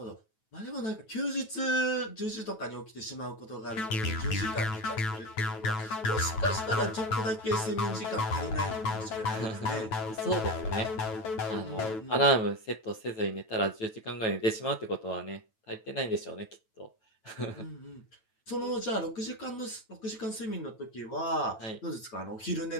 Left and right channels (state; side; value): late; right; 9.2 ms